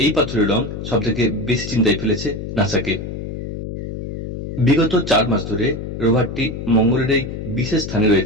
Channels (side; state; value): left; noise; hum, 7 dB below the sound